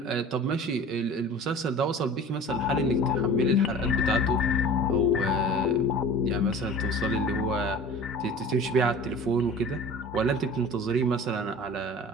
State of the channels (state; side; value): normal; both; correlation 0.40